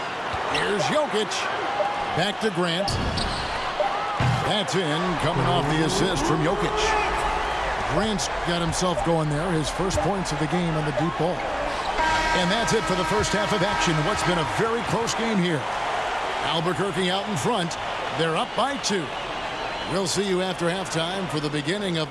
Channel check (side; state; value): both; identical; correlation 1.00